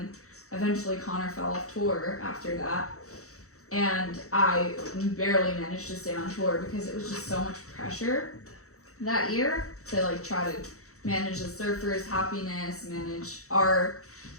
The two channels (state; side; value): late; right; 0.64 ms